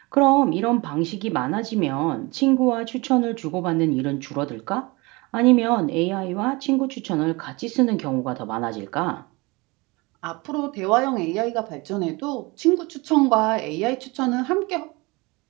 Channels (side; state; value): left; quieter; 24.8 dB